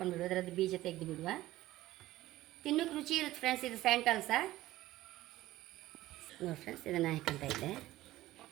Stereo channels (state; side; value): quieter; left; 15.9 dB